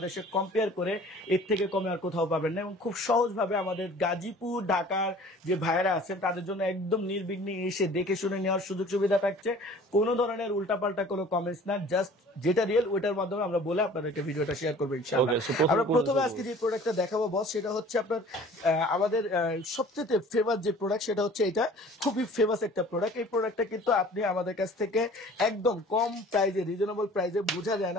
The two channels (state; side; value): normal; both; correlation 0.48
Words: কম্পেয়ার করে এর থেকে কমে আর কোথাও পাবেন না, এবং খুব সহজভাবে আমাদের গাজীপুর ঢাকার যে ভাইয়েরা আছেন তাদের জন্য একদম নির্বিঘ্নে এসে দেখে শুনে নেওয়ার সুযোগ সুবিধা থাকছে। কোনো ধরনের উল্টাপাল্টা কোনো কমেন্টস না, জাস্ট যেটা রিয়েল ওইটার মাধ্যমে আমরা বলে আপনাদেরকে ভিডিওটা শেয়ার করবো ইনশাআল্লাহ। আমরা প্রথমে আজকে যে প্রোডাক্টটা দেখাবো বস, সেটা হচ্ছে আপনার আমাদের সবচেয়ে ফেমাস যে প্রোডাক্ট সেটা হচ্ছে এটা। খুবই ফেমাস একটা প্রোডাক্ট। এই প্রোডাক্টটা কিন্তু আপনি আমাদের কাছ থেকে একদম কম প্রাইজে, রিজনেবল প্রাইজে, বোঝা যায়